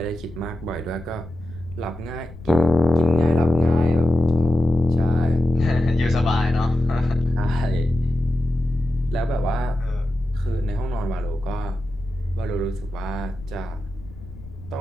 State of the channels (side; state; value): left; noise; rumble, 17 dB below the sound